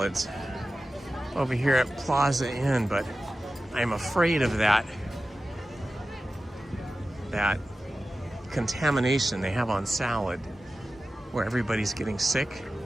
over here at Plaza Inn, but I'm afraid of that contamination they have on salad where everybody's getting sick.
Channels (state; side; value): normal; both; correlation 0.94